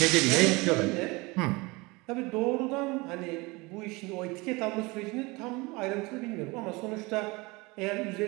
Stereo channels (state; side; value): quieter; left; 24.5 dB